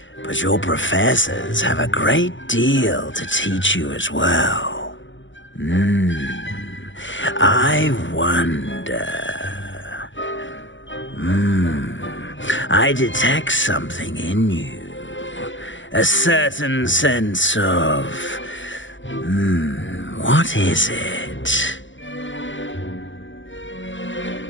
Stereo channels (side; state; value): right; late; 0.55 ms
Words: but your professors have a great deal to teach you as well. I wonder... I detect something in you. A certain sense of... what is it?